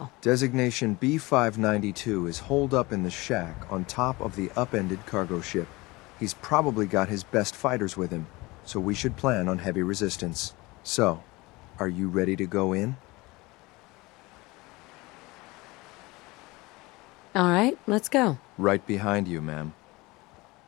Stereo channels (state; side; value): quieter; right; 22.5 dB